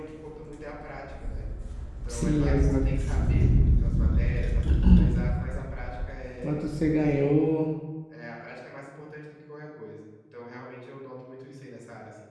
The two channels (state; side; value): identical; both; correlation 1.00